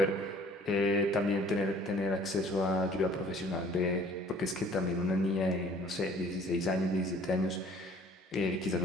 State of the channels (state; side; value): normal; both; correlation 0.53